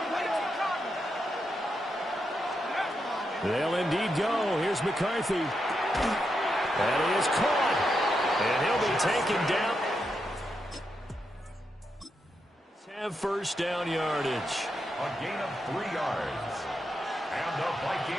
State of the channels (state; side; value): normal; both; correlation 0.84